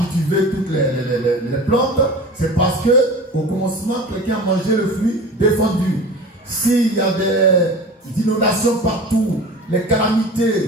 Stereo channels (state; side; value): normal; both; correlation 0.36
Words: toutes les plantes, c'est parce que au commencement, quelqu'un a mangé le fruit défendu. S'il y a des inondations partout, les